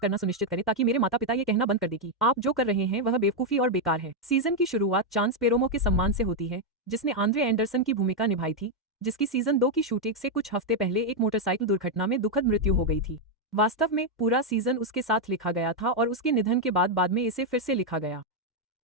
सुनिश्चित करें ताकि मेरे माता पिता ये कहना बंद कर दें कि आप जो कर रहे हैं वह बेवकूफी और बेकार है। सीजन की शुरुआत चांस पेरोमो के सम्मान से होती है, जिसने आंद्रे एंडरसन की भूमिका निभाई थी, जिसकी सीजन 2 की शूटिंग से कुछ हफ्ते पहले एक मोटरसाइकिल दुर्घटना में दुखद मृत्यु हो गई थी। वास्तव में पूरा सीजन उसके साथ लिखा गया था और उसके निधन के बाद में इसे फिर से लिखा गया।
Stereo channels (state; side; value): normal; both; correlation 0.01